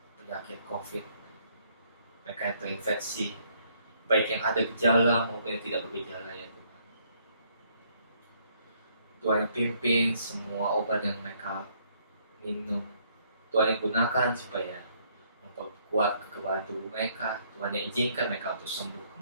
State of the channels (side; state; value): both; inverted; correlation -0.67